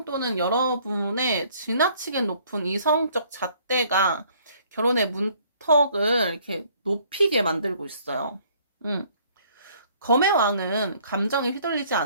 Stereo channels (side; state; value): both; inverted; correlation -0.60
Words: 또는 여러분의 지나치게 높은 이성적 잣대가 결혼의 문턱을 이렇게 높이게 만들고 있어요. 음. 검의 왕은 감정에 휘둘리지